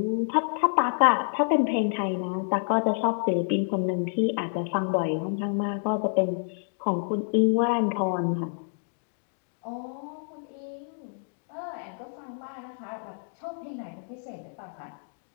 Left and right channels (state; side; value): silent; right; digital silence